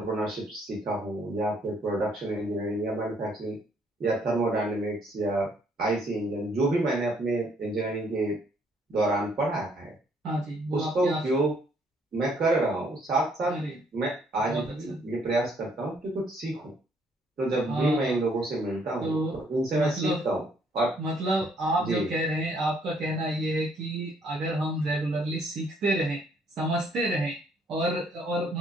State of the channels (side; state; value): both; normal; correlation 0.66